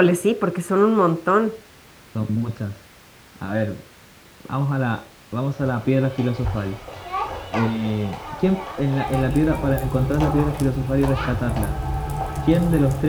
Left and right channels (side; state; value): both; identical; correlation 1.00